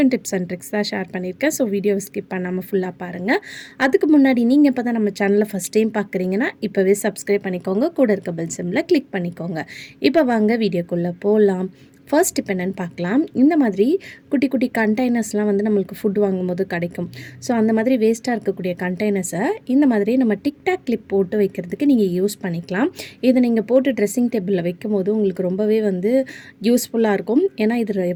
டிப்ஸ் அண்ட் ட்ரிக்ஸ் தான் ஷேர் பண்ணியிருக்கேன். ஸோ வீடியோவை ஸ்கிப் பண்ணாமல் ஃபுல்லாக பாருங்கள். அதுக்கு முன்னாடி நீங்கள் இப்போ தான் நம்ம சேனலை ஃபஸ்ட் டைம் பார்க்குறீங்கன்னா இப்போவே சப்ஸ்கிரைப் பண்ணிக்கோங்க. கூட இருக்க பெல் சிம்பிளை கிளிக் பண்ணிக்கோங்க. இப்போ வாங்க வீடியோக்குள்ளே போகலாம். ஃபர்ஸ்ட் இப்போ என்னென்னு பார்க்கலாம். இந்த மாதிரி குட்டி குட்டி கண்டெய்னர்ஸ்லாம் வந்து நம்மளுக்கு ஃபுட் வாங்கும்போது கிடைக்கும். ஸோ அந்த மாதிரி வேஸ்ட்டாக இருக்கக்கூடிய கண்டெய்னர்ஸை இந்த மாதிரி நம்ம டிக்டாக் கிளிப் போட்டு வைக்கிறதுக்கு நீங்கள் யூஸ் பண்ணிக்கலாம். இதை நீங்கள் போட்டு ட்ரெஸ்ஸிங் டேபிளில் வைக்கும்போது உங்களுக்கு ரொம்பவே வந்து யூஸ்ஃபுல்லாக இருக்கும். ஏன்னா இதில்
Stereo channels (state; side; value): identical; both; correlation 1.00